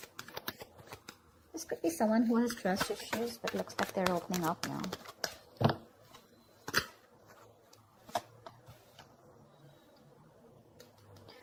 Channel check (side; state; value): both; identical; correlation 1.00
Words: This could be someone who has trust issues, but looks like they're opening up now.